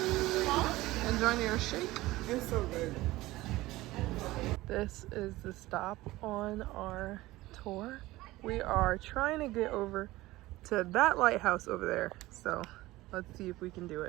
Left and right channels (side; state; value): left; quieter; 18.2 dB